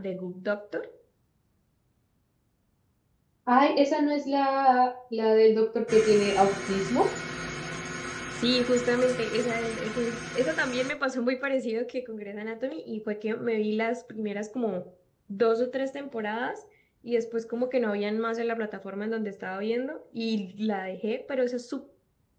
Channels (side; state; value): both; identical; correlation 1.00